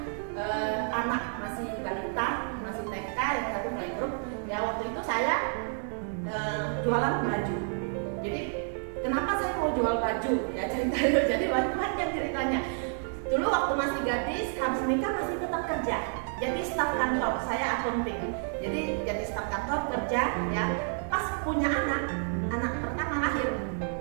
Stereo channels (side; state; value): left; silent; 58 dB below the other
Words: anak masih balita, masih TK, yang satu playgroup. Ya waktu itu saya jualan baju. Jadi kenapa saya mau jual baju? Ya ceritanya, jadi banyak ceritanya. Dulu waktu masih gadis, habis nikah masih tetap kerja. Jadi staf kantor, saya akunting. Jadi staf kantor kerja ya. Pas punya anak pertama lahir,